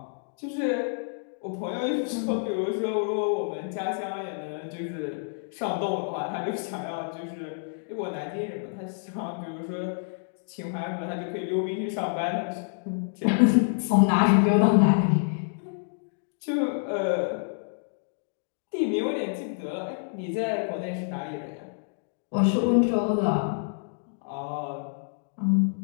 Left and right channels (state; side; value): silent; right; digital silence